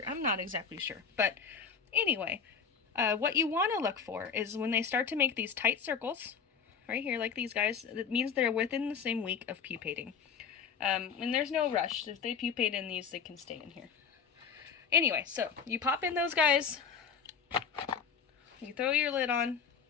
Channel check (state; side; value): quieter; right; 6.4 dB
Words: I'm not exactly sure, but anyway, what you want to look for is when they start to make these tight circles, right here, like these guys, that means they're within the same week of pupating. And there's no rush. If they pupate in these, they can stay in here. Anyway, so you pop in those guys, you throw your lid on.